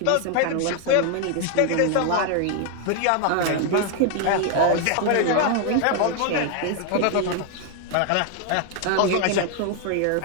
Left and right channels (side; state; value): both; different; correlation 0.00